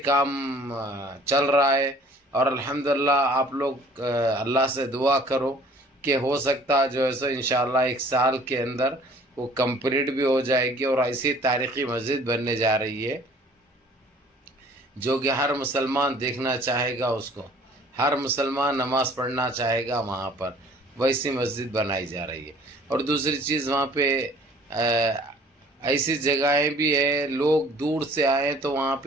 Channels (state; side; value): normal; both; correlation 0.53